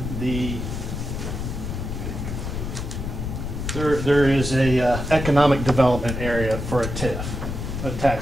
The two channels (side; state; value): left; noise; rumble, 5 dB below the sound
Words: the, there is a economic development area for a TIF, a